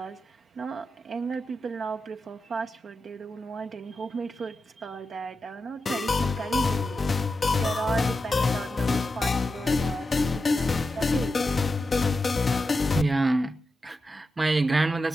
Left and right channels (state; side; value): normal; both; correlation 0.90